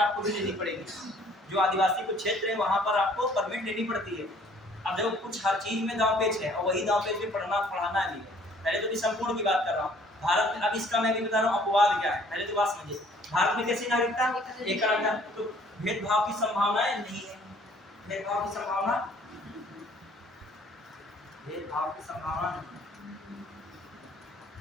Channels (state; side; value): normal; both; correlation 0.57